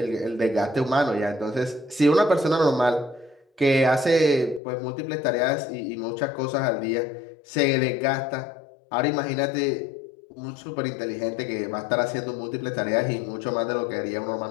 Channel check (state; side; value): drops out; right; at 4.6 s